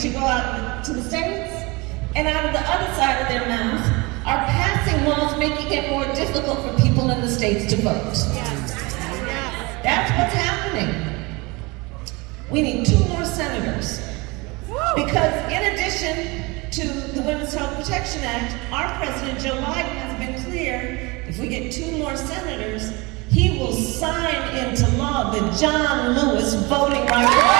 go out to the states, and out of the other side of their mouth, are passing laws making it more difficult for people in the states to vote. That's what's happening. We need 2 more senators. Because in addition to the Women's Health Protection Act, our President Joe Biden has been clear, if we get 2 more senators, he will sign into law the John Lewis Voting Rights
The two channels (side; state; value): left; quieter; 25.6 dB